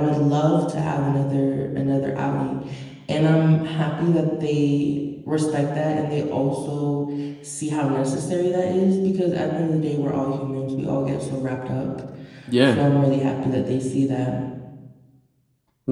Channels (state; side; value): identical; both; correlation 1.00